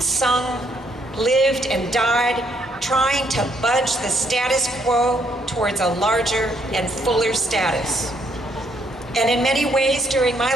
sung, lived and died, trying to budge the status quo towards a larger and fuller status." And in many ways during my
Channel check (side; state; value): both; normal; correlation 0.71